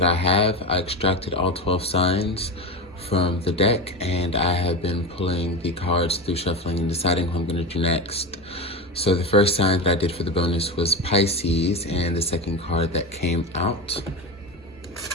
I have. I extracted all 12 signs from the deck, and I have been pulling the cards through shuffling and deciding who I'm going to do next. So the first sign that I did for the bonus was Pisces, and the second card that came out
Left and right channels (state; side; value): normal; both; correlation 0.21